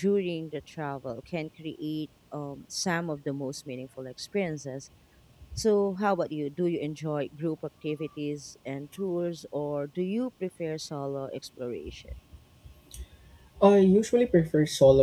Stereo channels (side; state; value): both; identical; correlation 1.00